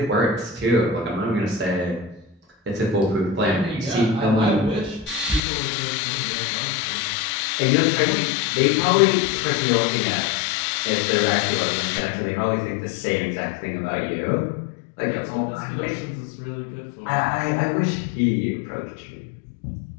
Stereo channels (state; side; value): drops out; right; at 5.4 s